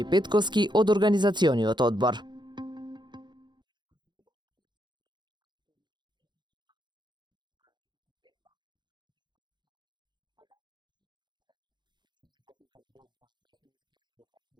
Петковски од организациониот одбор. Утре ќе се одржи петтото издание на турнирот Охрид Open 2025 во Олимписко теквондо. Па дали е се подготвено? Утре со почеток во 9 часот во спортскиот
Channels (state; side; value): late; left; 0.22 ms